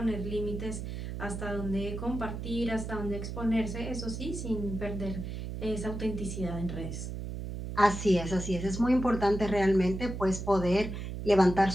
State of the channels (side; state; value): right; noise; hum, 6 dB below the sound